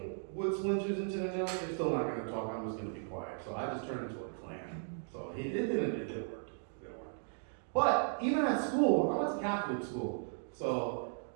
wood splinters into the nails, they're still not going to talk. I'm just going to be quiet. So I just turned into a clam. So it didn't work. But even at school, I went to Catholic school. So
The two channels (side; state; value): left; silent; digital silence